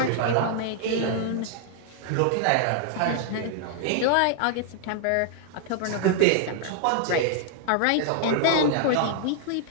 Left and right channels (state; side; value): different; both; correlation -0.01